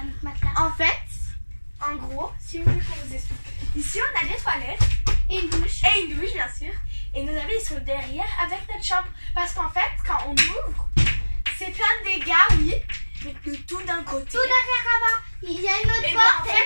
matelas. En fait, en gros, si vous voulez qu'on vous explique. Ici, on a des toilettes. Et une douche. Et une douche, bien sûr. Et nos habits, ils sont derrière avec notre chambre. Parce qu'en fait, quand on ouvre, c'est plein de dégâts, oui. Mais de tout d'un côté. Tout derrière là-bas. Il y a une autre Et ben, porte. en fait,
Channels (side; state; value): both; inverted; correlation -1.00